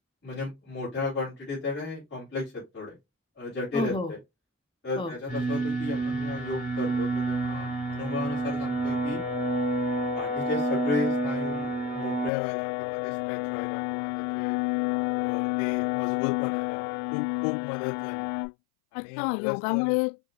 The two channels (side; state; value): right; drops out; at 12.3 s